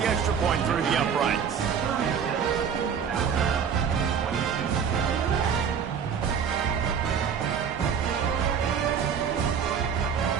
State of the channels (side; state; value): left; quieter; 7.2 dB